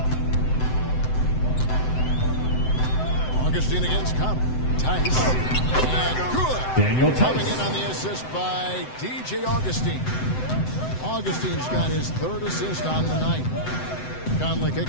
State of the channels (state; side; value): late; right; 7.8 ms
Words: Augustine against Conley. Tice. And good. Daniel Tice. Coming in on the assist by DJ Augustine. Augustine's got his 3rd assist on the night. Conley